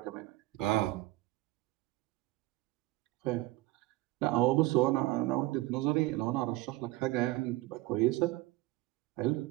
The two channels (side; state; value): left; quieter; 19.0 dB